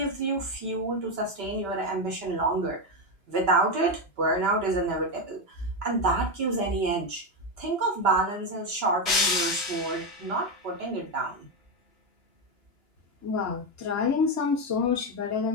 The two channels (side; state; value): left; late; 2.9 ms